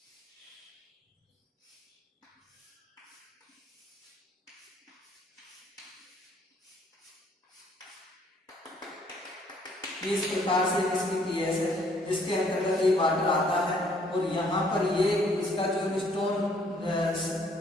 इस प्रकार से इसकी पीएस है, जिसके अंतर्गत ये वाटर आता है। और यहाँ पर ये इसका जो स्टोन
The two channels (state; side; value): normal; both; correlation 0.63